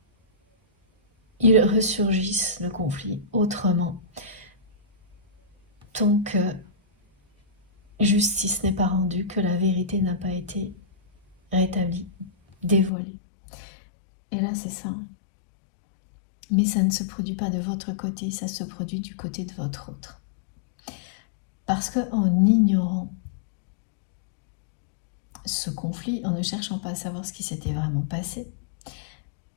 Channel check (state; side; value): drops out; right; at 12.9 s